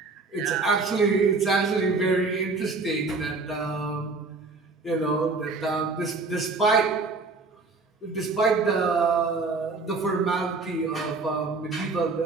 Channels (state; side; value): quieter; left; 3.9 dB